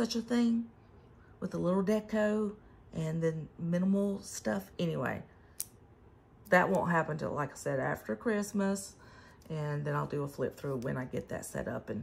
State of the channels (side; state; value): both; identical; correlation 1.00